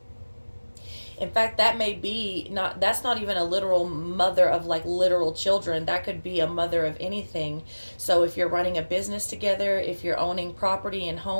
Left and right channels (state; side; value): inverted; both; correlation -1.00